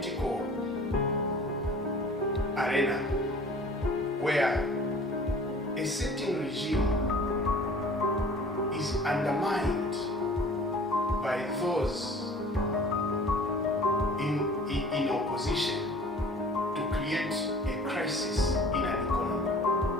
arena, where a certain regime is undermined by those in opposition to create a crisis in an economy,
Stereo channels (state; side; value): normal; both; correlation 0.47